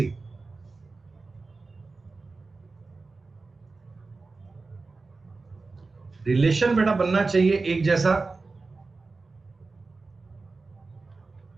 रिलेशन बेटा बनना चाहिए एक जैसा।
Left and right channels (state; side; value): quieter; left; 3.8 dB